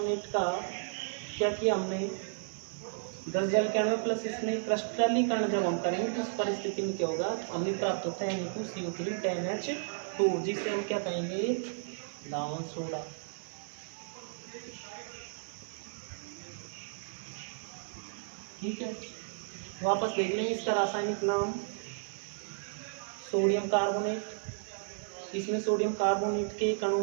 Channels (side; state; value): left; silent; digital silence